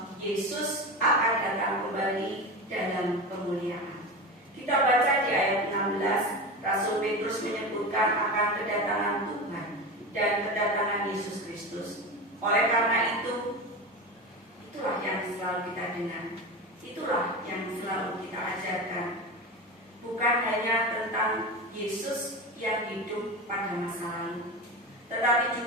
Yesus akan datang kembali dalam kemuliaan. Kita baca di ayat 16, Rasul Petrus menyebutkan akan kedatangan Tuhan dan kedatangan Yesus Kristus. Oleh karena itu, itulah yang selalu kita dengar, itulah yang selalu kita ajarkan. Bukan hanya tentang Yesus yang hidup pada masa lalu, tetapi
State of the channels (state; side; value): normal; both; correlation 0.25